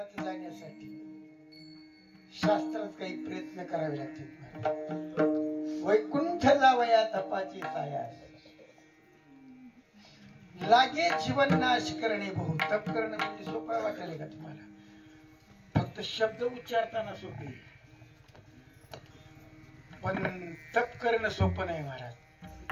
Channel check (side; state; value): both; identical; correlation 1.00